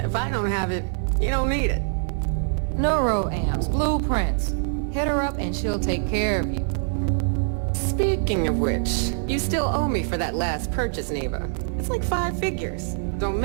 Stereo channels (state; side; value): silent; left; digital silence